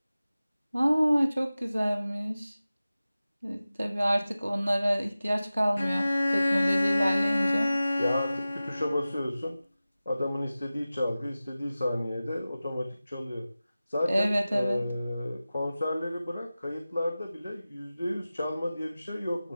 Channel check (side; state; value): both; inverted; correlation -0.96